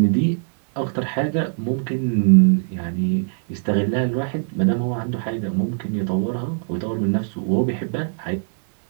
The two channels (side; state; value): left; silent; 62 dB below the other